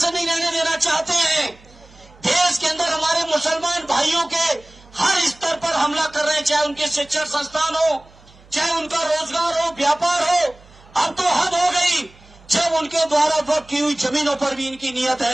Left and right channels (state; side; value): noise; right; hum, 26 dB below the sound